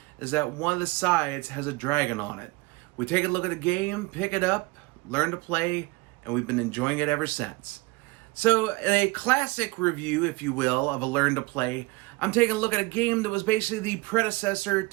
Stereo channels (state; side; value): quieter; left; 24.5 dB